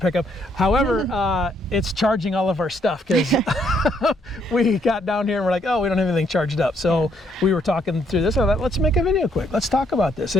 pickup. However, it's charging all of our stuff because we got down here and we're like, oh, we don't have anything charged up. So we were talking through this. I thought, let's make a video quick. Let's talk about this.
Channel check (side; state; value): both; normal; correlation 0.71